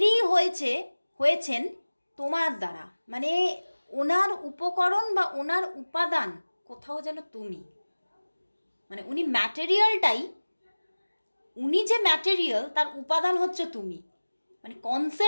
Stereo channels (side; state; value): both; inverted; correlation -1.00